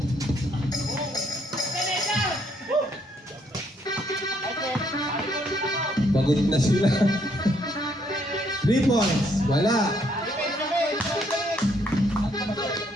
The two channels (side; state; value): both; normal; correlation 0.70